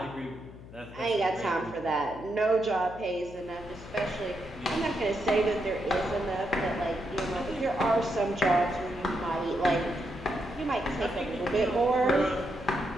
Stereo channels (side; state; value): left; noise; hum, 16 dB below the sound